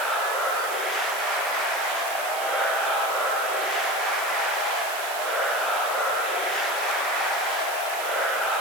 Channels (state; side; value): noise; right; hiss, 9 dB below the sound